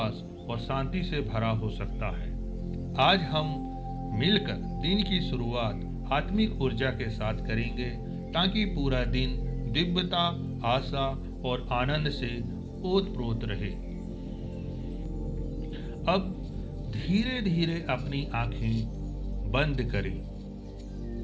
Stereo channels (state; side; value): identical; both; correlation 1.00